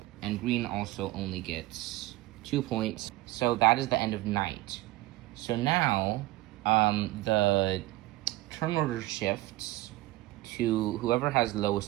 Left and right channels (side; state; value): left; quieter; 18.2 dB